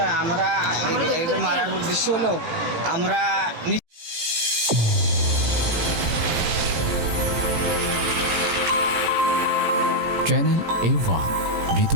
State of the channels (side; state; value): left; late; 18 ms